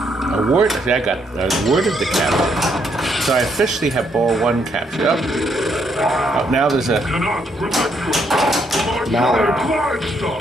Award. I got awarded the capture. So I officially have ball one captured. Oh, now there's a. Mallard.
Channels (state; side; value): normal; both; correlation 0.73